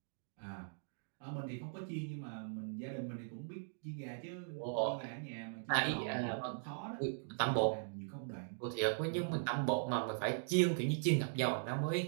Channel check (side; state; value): left; silent; digital silence